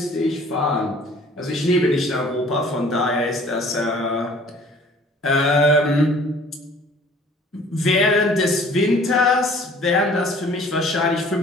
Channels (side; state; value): both; normal; correlation 0.52